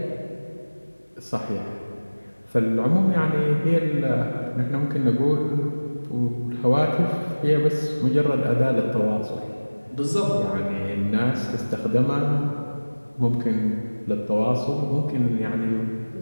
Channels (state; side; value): inverted; both; correlation -1.00